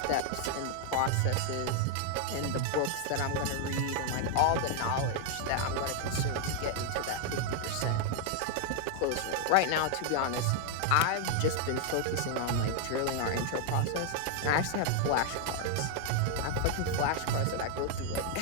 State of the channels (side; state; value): both; different; correlation 0.00